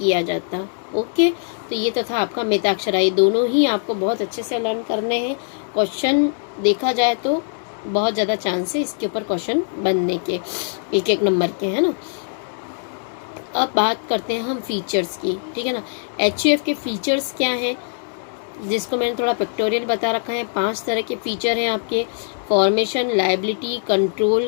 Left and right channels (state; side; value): silent; right; digital silence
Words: जाता। ओके, तो ये तो था आपका मिताक्षरा। ये दोनों ही आपको बहुत अच्छे से लर्न करने हैं। क्वेश्चन देखा जाए तो बहुत ज़्यादा चांस है इसके ऊपर क्वेश्चन बनने के, 1-1 नंबर के, है ना। अब बात करते हैं हम फीचर्स की। ठीक है ना, एचयूएफ के फीचर्स क्या हैं, जिसको मैंने थोड़ा पिक्टोरियल बता रखा है। 5 तरह के फीचर हैं आपके, formation, liability,